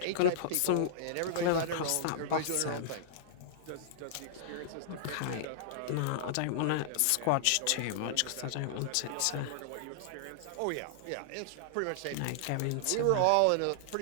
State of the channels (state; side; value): different; both; correlation -0.01